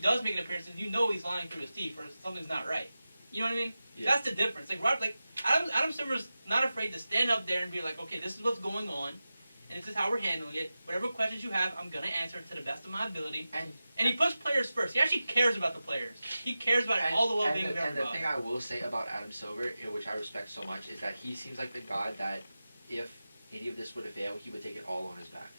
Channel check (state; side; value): inverted; both; correlation -0.94